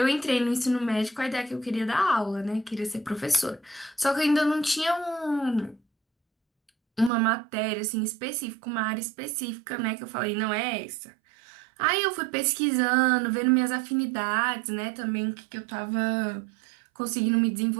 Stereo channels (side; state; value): left; drops out; at 7.1 s